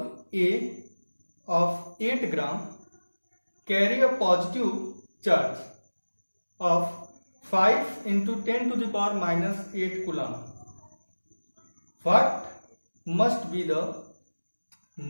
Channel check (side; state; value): both; inverted; correlation -1.00